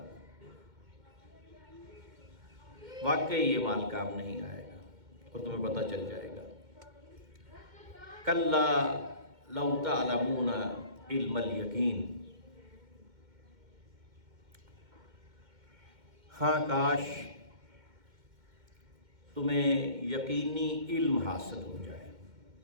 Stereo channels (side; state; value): left; late; 2.1 ms